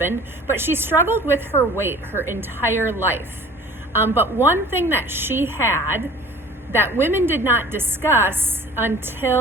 but she struggled with her weight her entire life. But one thing that she had that women did not discuss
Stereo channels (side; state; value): both; normal; correlation 0.46